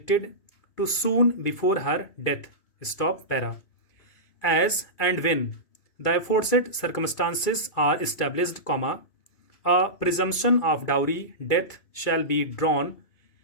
to soon before her death. Stop para. As and when the aforesaid circumstances are established, comma, a presumption of dowry death shall be drawn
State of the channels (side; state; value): right; late; 2.7 ms